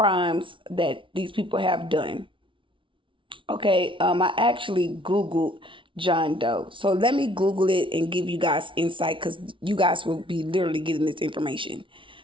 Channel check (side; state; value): left; late; 0.25 ms